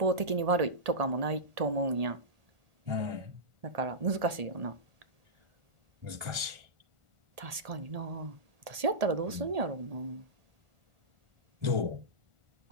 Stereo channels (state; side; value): late; left; 1.8 ms